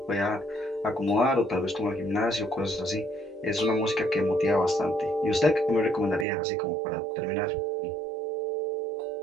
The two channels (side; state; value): left; drops out; at 6.2 s